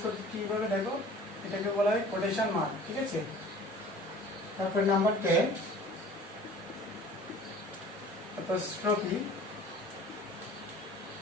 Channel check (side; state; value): both; normal; correlation 0.46